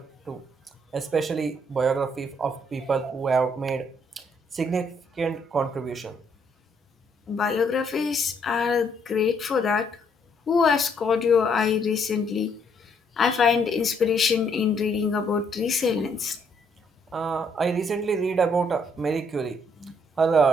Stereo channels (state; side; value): normal; both; correlation 0.70